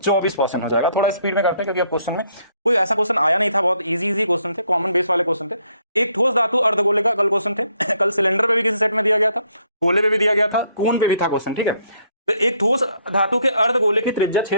हो जाएगा। थोड़ा स्पीड में करते हैं क्योंकि क्वेश्चन में कोई ऐसा क्वेश्चन आया नहीं था, बहुत इजी क्वेश्चन थे, कॉमन बेस वाले क्वेश्चन थे। एक ठोस धातु अर्धगोले का कल क्वेश्चन थे। कल सिलेंडर पे भी किसी सेट में दिया गया था, गोले पे भी दिया गया था, कोन पे भी था क्वेश्चन, ठीक है। तो एक ठोस धातु के अर्धगोले की त्रिज्या 6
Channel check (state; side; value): inverted; both; correlation -0.69